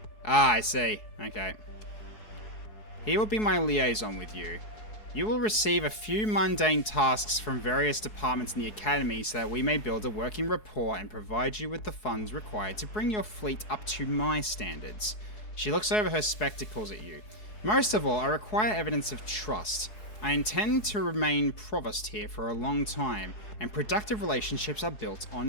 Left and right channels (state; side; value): late; right; 4.7 ms